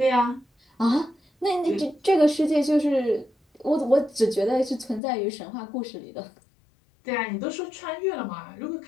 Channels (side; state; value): right; drops out; at 5.0 s